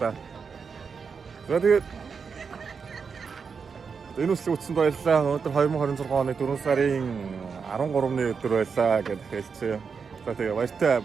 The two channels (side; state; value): left; quieter; 5.7 dB